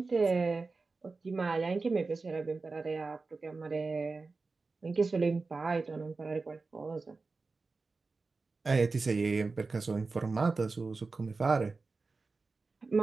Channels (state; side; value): quieter; left; 4.0 dB